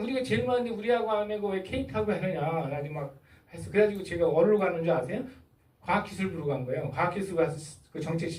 제일 많은데 우리하고 안 하고 왜 KT하고 하느냐. 나중에 막 했어. 그래가지고 제가 어디로 가는 줄 아세요? 과학기술부로 간 거예요. 과학기술 가서 그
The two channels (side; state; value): both; identical; correlation 1.00